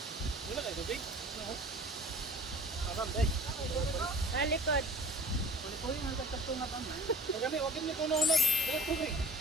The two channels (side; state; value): both; normal; correlation 0.46